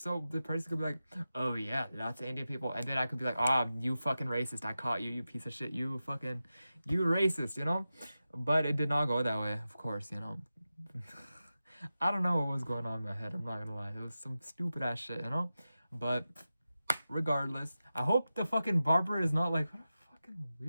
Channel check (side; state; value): both; inverted; correlation -0.93